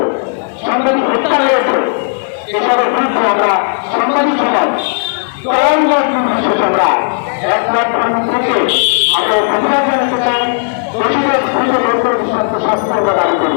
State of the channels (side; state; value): right; silent; digital silence